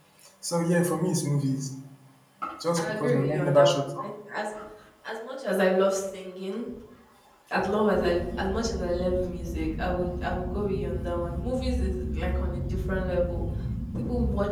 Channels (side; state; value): both; identical; correlation 1.00